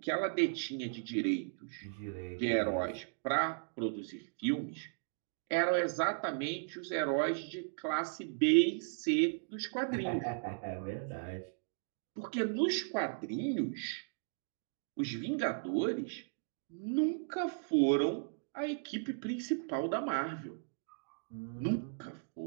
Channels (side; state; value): left; silent; digital silence